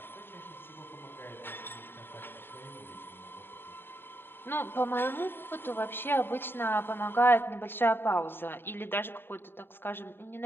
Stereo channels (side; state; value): right; late; 0.10 ms